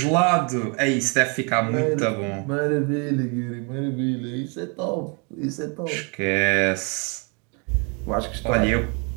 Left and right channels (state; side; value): quieter; left; 35.1 dB